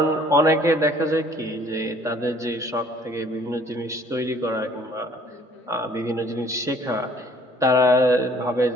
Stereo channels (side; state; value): both; normal; correlation 0.57